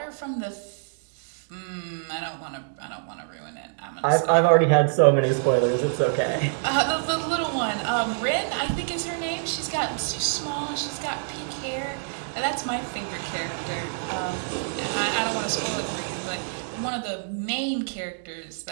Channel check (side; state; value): left; silent; digital silence